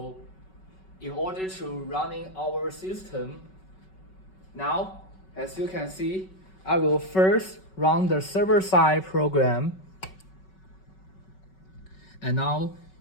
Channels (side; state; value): right; late; 5.3 ms